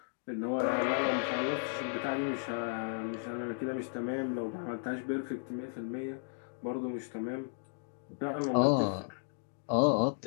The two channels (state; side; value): silent; right; digital silence